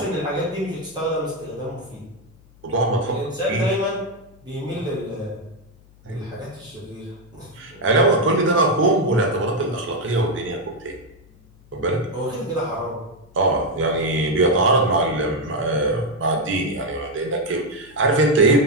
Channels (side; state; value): left; noise; hum, 27 dB below the sound